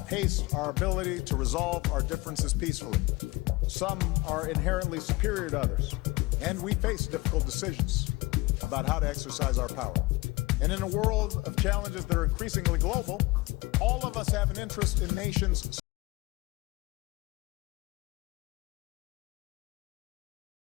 our ability to resolve our differences peacefully. Some are inherently superior to others, and we face difficult decisions about how to exercise our power. And in a world of challenges that are increasingly global, all of us have an interest in nations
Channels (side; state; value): right; quieter; 21.8 dB